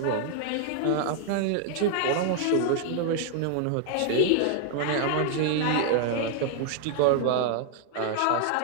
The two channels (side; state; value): both; different; correlation 0.00